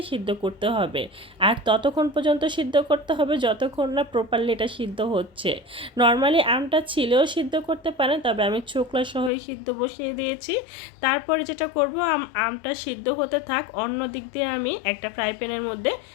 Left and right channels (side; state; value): right; drops out; at 9.3 s